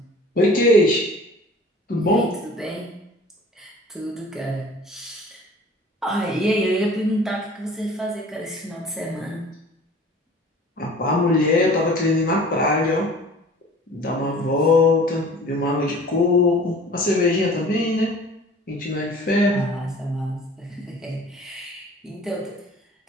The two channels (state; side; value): normal; both; correlation 0.46